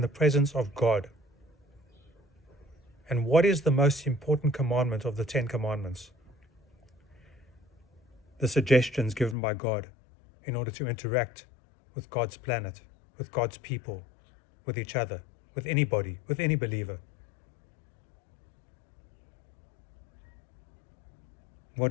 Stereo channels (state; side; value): drops out; right; at 9.3 s